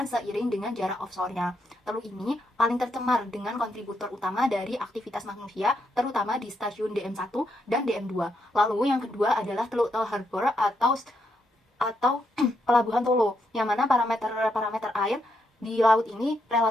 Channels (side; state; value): both; normal; correlation 0.79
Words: seiring dengan jarak offshore-nya. Teluk ini paling tercemar dengan kontributor utama dari aktivitas manusia, terutama di stasiun DM1 dan DM2. Lalu yang kedua adalah Teluk Tel Harbor atau Pelabuhan Tolo, yang mana parameter air di laut ini